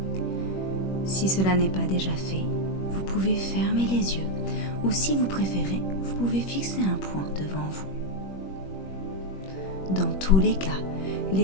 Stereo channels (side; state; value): right; late; 21 ms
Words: Si cela n'est pas déjà fait, vous pouvez fermer les yeux ou si vous préférez, vous pouvez fixer un point devant vous. Dans tous les cas,